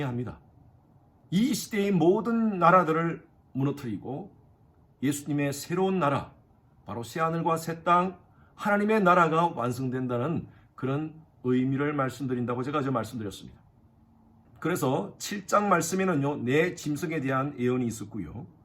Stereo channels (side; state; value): both; identical; correlation 1.00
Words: 이 시대의 모든 나라들을 무너뜨리고 예수님의 새로운 나라, 바로 새하늘과 새 땅, 하나님의 나라가 완성된다는 그런 의미를 말씀드린다고 제가 어제 말씀드렸습니다. 그래서 7장 말씀에는요, 내 짐승에 대한 예언이 있었고요.